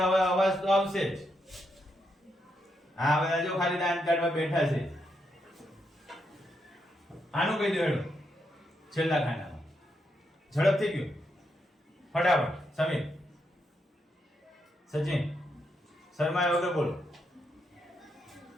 હવે અવાજ તો આવશે જ. હા બધા જો ખાલી દાન કાઢવા બેઠા છે. આનું કહી દો હેડો છેલ્લા ખાનામાં. ઝડપથી ગયું ફટાફટ. સમીર, સચિન, શર્મા વગર બોલો.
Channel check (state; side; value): normal; both; correlation 0.81